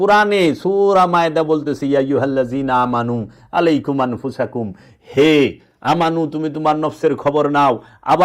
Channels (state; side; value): identical; both; correlation 1.00